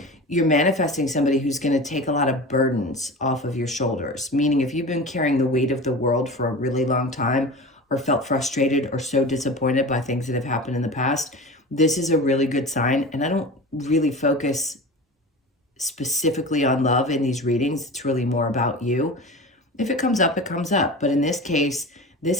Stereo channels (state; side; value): normal; both; correlation 0.32